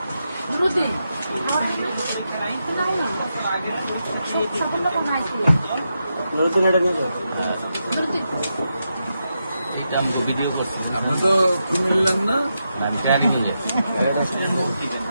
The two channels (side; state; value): both; inverted; correlation -0.86